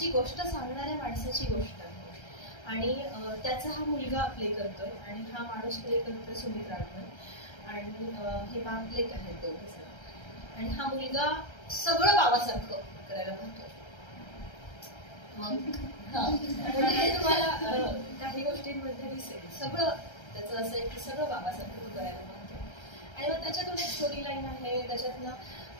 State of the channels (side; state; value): right; late; 1.3 ms